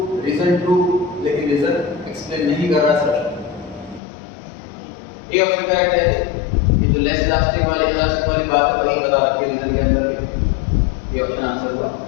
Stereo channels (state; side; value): drops out; right; at 4.0 s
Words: रीजन ट्रू, लेकिन रीजन एक्सप्लेन नहीं कर रहा असर्शन। ए ऑप्शन करेक्ट है कि जो लेस इलास्टिक वाली बात है वही बता रखी है रीजन के अंदर। ये ऑप्शन आंसर हुआ।